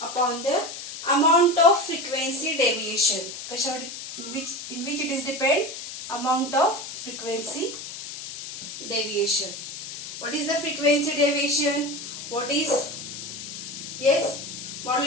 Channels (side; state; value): left; noise; hiss, 9 dB below the sound